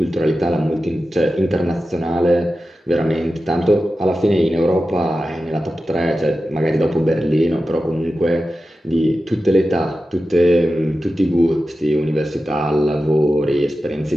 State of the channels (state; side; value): normal; both; correlation 0.93